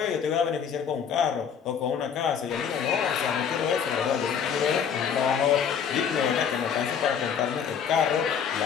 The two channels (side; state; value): right; quieter; 7.4 dB